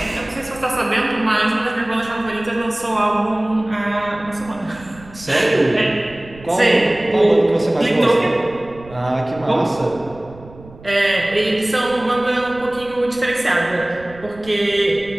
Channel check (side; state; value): right; noise; rumble, 20 dB below the sound